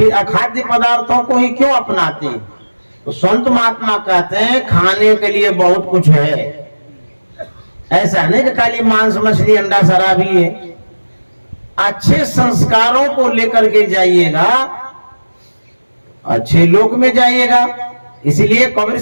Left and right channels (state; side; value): inverted; both; correlation -1.00